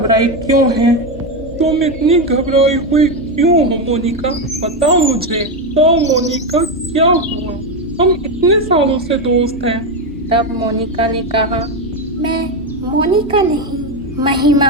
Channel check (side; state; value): both; normal; correlation 0.10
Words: क्यों है? तुम इतनी घबराई हुई क्यों हो मोनिका? बताओ मुझे। तो मोनिका, क्या हुआ? हम इतने सालों से दोस्त हैं। तब मोनिका ने कहा, मैं मोनिका नहीं, महिमा